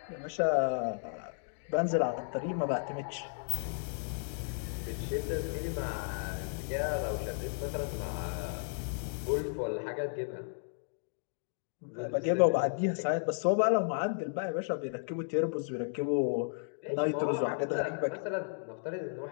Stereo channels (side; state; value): right; silent; digital silence